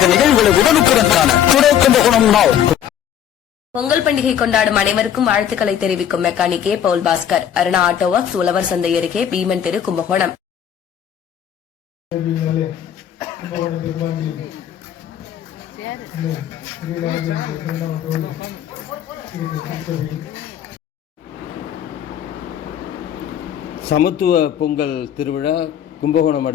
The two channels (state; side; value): quieter; right; 9.7 dB